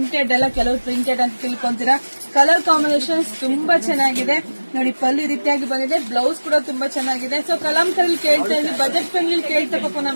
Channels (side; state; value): both; inverted; correlation -1.00